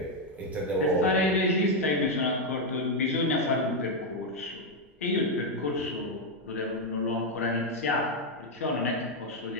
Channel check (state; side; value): normal; both; correlation 0.02